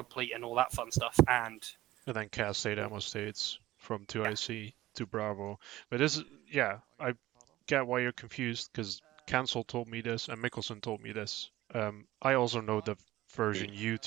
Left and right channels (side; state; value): left; quieter; 16.4 dB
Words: and all that fun stuff, and then CAS state ammo states from 2IC to Bravo. But this, I get why you're confused, because Cancel told me this, and Mickelson told me this. I also know the version you